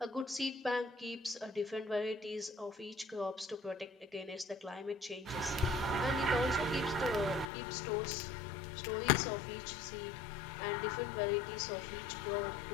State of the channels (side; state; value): right; drops out; at 7.5 s